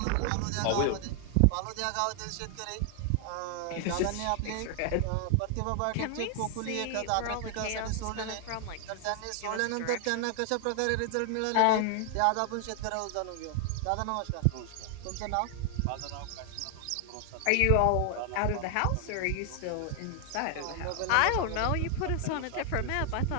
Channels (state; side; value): different; both; correlation 0.00